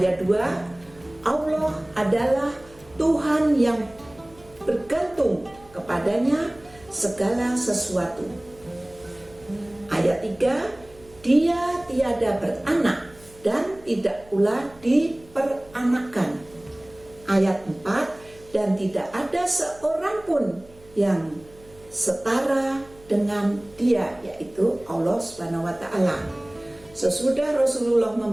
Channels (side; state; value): right; noise; hum, 25 dB below the sound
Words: 2, Allah adalah Tuhan yang bergantung kepadanya segala sesuatu. Ayat 3, Dia tiada beranak dan tidak pula diperanakan. Ayat 4, dan tidak ada seorang pun yang setara dengan Dia, yaitu Allah Subhanahu wa Ta'ala. Sesudah Rasulullah